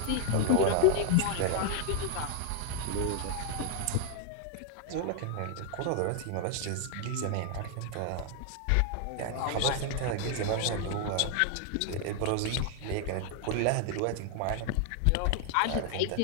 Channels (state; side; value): different; both; correlation 0.00